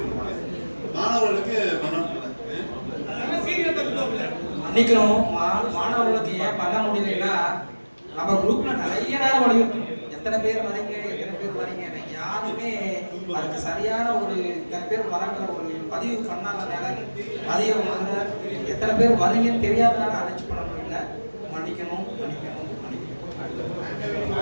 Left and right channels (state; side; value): inverted; both; correlation -1.00